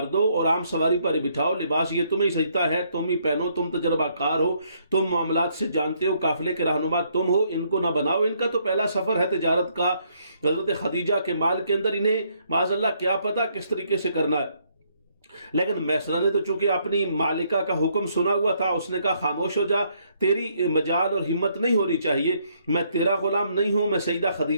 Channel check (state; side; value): inverted; both; correlation -0.70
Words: دو اور عام سواری پر بٹھاؤ، لباس یہ تمہیں سجتا ہے، تم ہی پہنو، تم تجربہ کار ہو، تم معاملات سے جانتے ہو، قافلے کے رہنما تم ہو، ان کو نہ بناؤ۔ ان کا تو پہلا سفر ہے تجارت کا، حضرت خدیجہ کے مال کے اندر، انہیں معاذ اللہ کیا پتا کس طریقے سے کرنا ہے۔ لیکن میسرہ نے تو چونکہ اپنی مالکہ کا حکم سنا ہوا تھا، اس نے کہا خاموش ہو جا، تیری مجال اور ہمت نہیں ہونی چاہیے، میں تیرا غلام نہیں ہوں، میں سیدہ